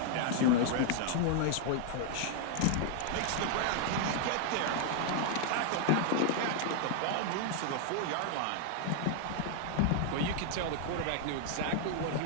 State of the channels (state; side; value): different; both; correlation 0.00